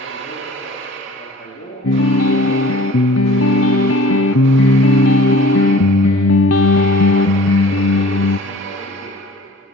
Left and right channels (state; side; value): normal; both; correlation 0.48